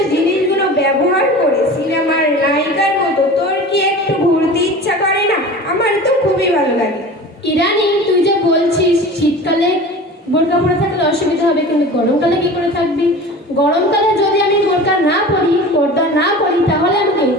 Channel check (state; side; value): normal; both; correlation 0.37